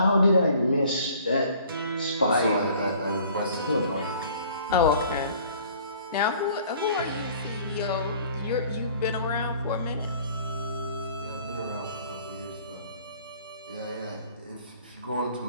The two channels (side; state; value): both; inverted; correlation -0.53